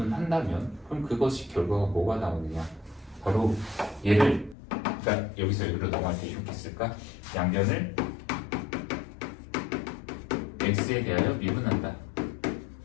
그럼 그것이 결과가 뭐가 나오느냐? 바로 얘를 그러니까 여기서 여기로 넘어갈 때 이렇게 쓸까? 양변을 x에 대하여 미분한다.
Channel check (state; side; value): drops out; right; at 4.5 s